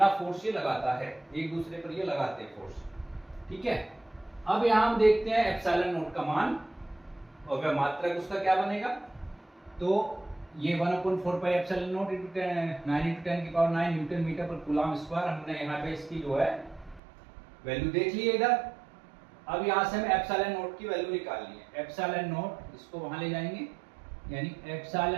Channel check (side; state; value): left; drops out; at 17.0 s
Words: फोर्स ये लगाता है, एक दूसरे पर ये लगाते हैं फोर्स। ठीक है, अब यहां हम देखते हैं ε0 का मान, और वह मात्रक उसका क्या बनेगा। तो ये 1/4πε0 × 9 × 10⁹ न्यूटन मीटर पर कूलाम स्क्वायर, हमने यहाँ पे इसकी जो है वैल्यू देख ली है इधर। अब यहाँ से हमें ε0 की वैल्यू निकालनी है। ε0 इसको वहां ले जाएंगे, यानी